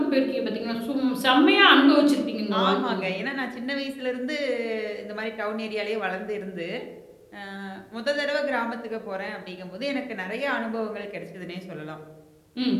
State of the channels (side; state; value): both; identical; correlation 1.00